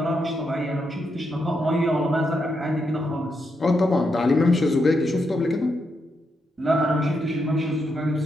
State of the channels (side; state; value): both; normal; correlation 0.82